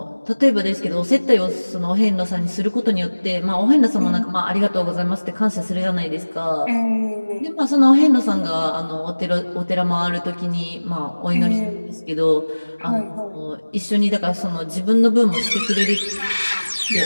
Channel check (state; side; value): inverted; both; correlation -1.00